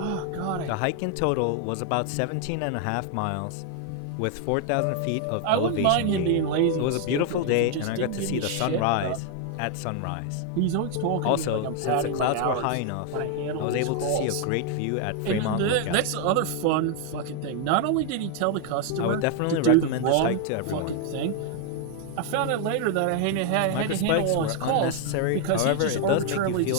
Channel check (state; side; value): different; both; correlation 0.00